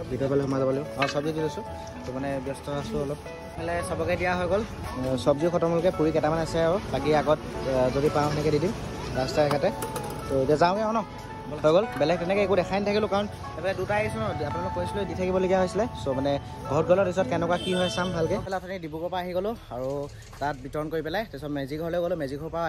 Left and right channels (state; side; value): identical; both; correlation 1.00